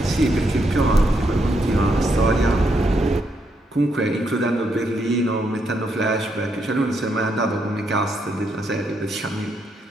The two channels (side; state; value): both; normal; correlation 0.78